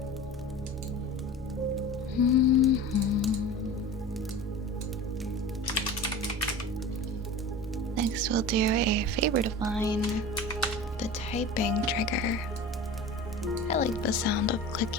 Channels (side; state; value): both; normal; correlation 0.35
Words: Next, we'll do a favorite of mine, the typing trigger. I like the sound of